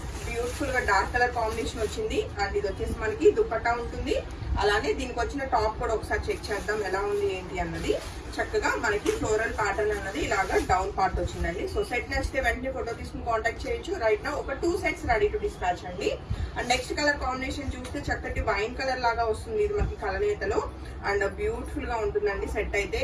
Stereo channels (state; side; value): identical; both; correlation 1.00